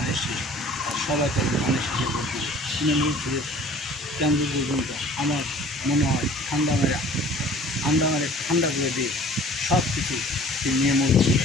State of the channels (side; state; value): both; normal; correlation 0.49